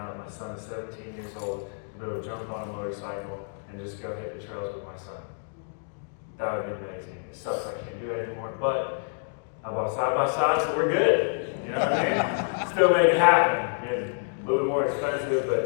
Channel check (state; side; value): silent; right; digital silence